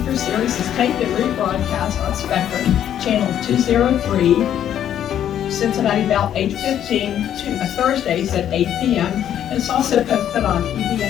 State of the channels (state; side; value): quieter; right; 10.3 dB